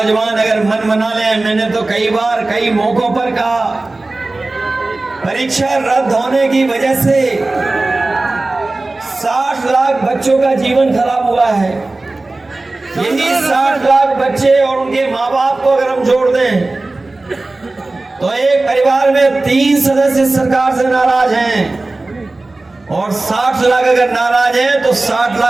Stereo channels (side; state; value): left; quieter; 3.1 dB